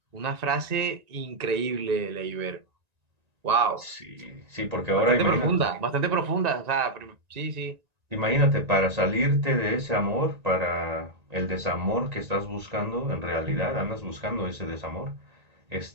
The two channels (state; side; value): late; left; 1.9 ms